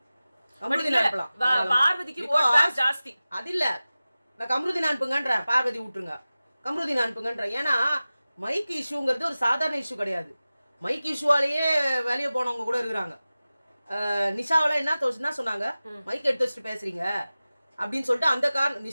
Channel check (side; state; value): both; inverted; correlation -0.96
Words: கம்ருதீன் அனுப்பலாம், பார்வதிக்கு ஓட் பேங்க் ஜாஸ்தி. அது இல்ல, நான் கம்ருதீன் அனுப்புங்கன்ற, பார்வதி விட்டுருங்க, கம்ருதீன் அனுப்புங்கன்ற. ஏன்னா மைக் இஷ்யூங்கிறது ஒரு சாதாரண இஷ்யூ கிடையாது. மைக் இஷ்யூவாலேயே வெளியே போனவங்க கூட இருக்கிறாங்க. நிஷாவெல்லாம் என்ன சொன்னாங்க, மைக் எடுத்து வச்சுட்டு பேசுறீங்க அப்படின்னு சொல்லிட்டு அந்த